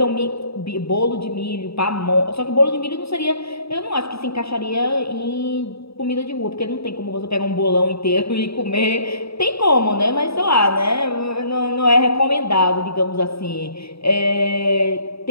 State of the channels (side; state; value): right; late; 0.77 ms